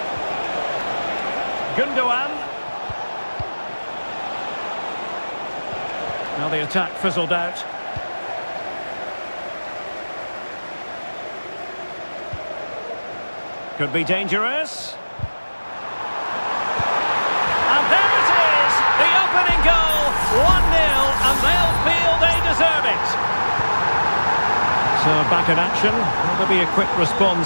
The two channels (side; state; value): both; inverted; correlation -1.00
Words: Gundogan. Now the attack fizzled out. Could be dangerous. And there it is! The opening goal! 1-0, and they'll feel they deserve it. So back in action. Will there be a quick